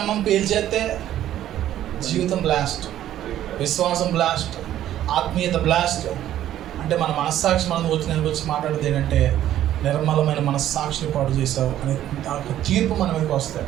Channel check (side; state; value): left; quieter; 12.2 dB